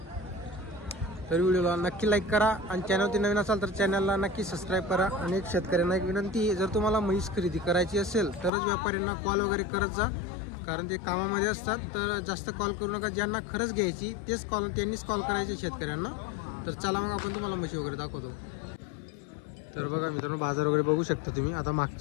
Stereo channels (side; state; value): right; drops out; at 8.5 s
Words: तर व्हिडिओला नक्की लाईक करा आणि चॅनलवरती नवीन असाल तर चॅनलला नक्की सबस्क्राइब करा। आणि एक शेतकऱ्यांना एक विनंती, जर तुम्हाला म्हैस खरेदी करायची असेल तरच व्यापाऱ्यांना कॉल वगैरे करत जा, कारण ते कामामध्ये असतात। तर जास्त कॉल करू नका, ज्यांना खरंच घ्यायची त्यांनीच कॉल करायचे शेतकऱ्यांना। तर चला मग आपण तुम्हाला म्हशी वगैरे दाखवतो। तर बघा मित्रांनो, बाजार वगैरे बघू शकता तुम्ही। आता